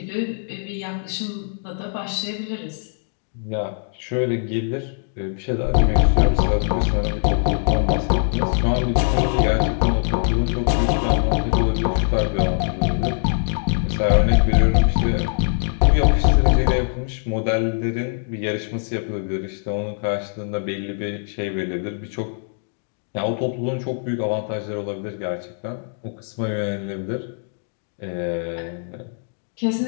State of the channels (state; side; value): silent; right; digital silence